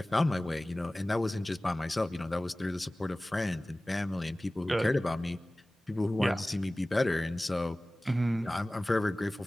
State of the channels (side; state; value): both; normal; correlation 0.98